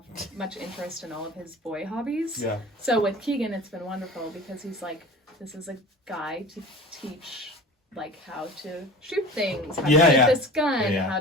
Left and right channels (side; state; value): both; normal; correlation 0.38